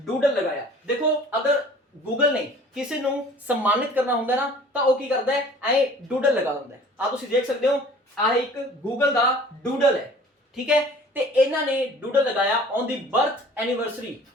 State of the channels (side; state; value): both; normal; correlation 0.48